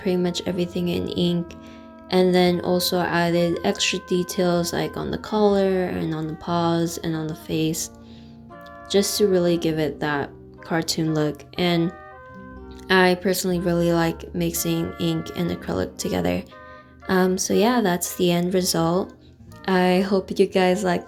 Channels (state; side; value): identical; both; correlation 1.00